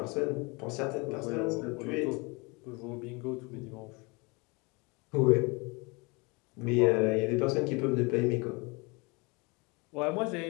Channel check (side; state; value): right; quieter; 28.2 dB